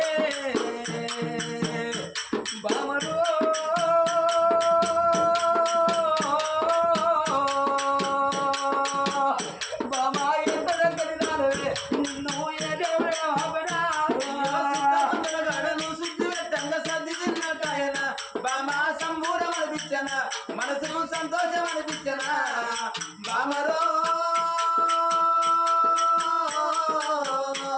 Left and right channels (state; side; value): identical; both; correlation 1.00